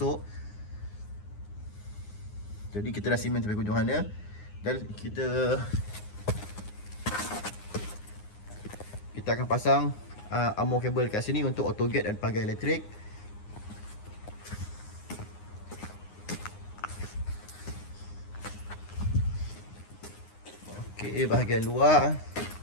Jadi kita dah simen sampai hujung sana. Dan kita akan pasang armor kabel kat sini untuk auto gate dan pagar elektrik. Okey, bahagian luar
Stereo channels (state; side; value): late; right; 9.7 ms